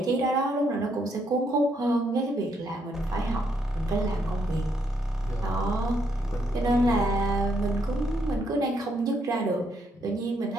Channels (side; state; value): both; normal; correlation 0.75